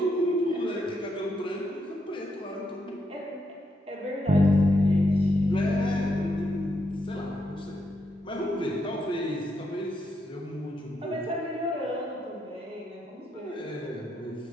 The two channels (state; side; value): normal; both; correlation 0.79